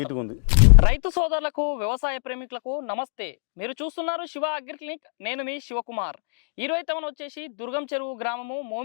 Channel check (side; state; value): right; silent; digital silence